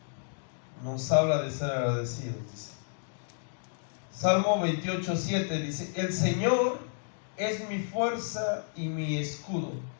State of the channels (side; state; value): right; silent; digital silence